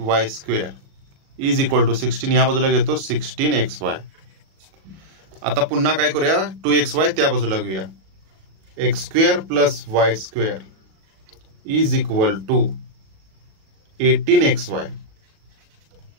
square is equal to 16, या बाजूला घेतो 16xy. आता पुन्हा काय करूया, 2xy त्या बाजूला घेऊया, x square plus y square is equal to 18xy.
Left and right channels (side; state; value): left; late; 37 ms